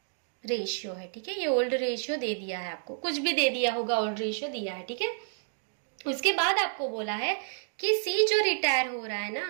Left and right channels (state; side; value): silent; left; digital silence